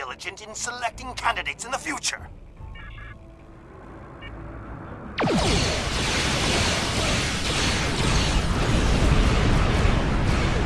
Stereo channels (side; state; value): both; identical; correlation 1.00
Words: in selecting candidates in the future.